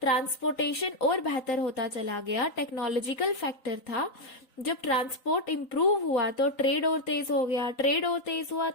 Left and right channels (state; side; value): late; right; 3.9 ms